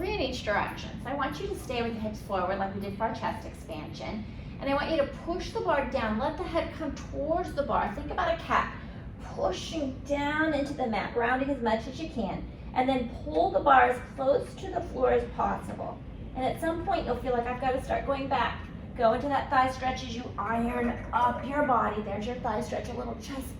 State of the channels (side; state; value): both; identical; correlation 1.00